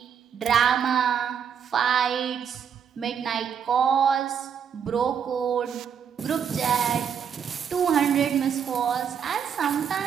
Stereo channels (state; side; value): quieter; left; 7.7 dB